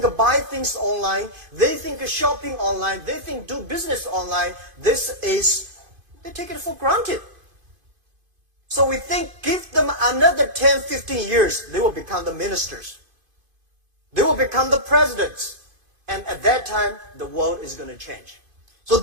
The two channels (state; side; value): late; left; 2.5 ms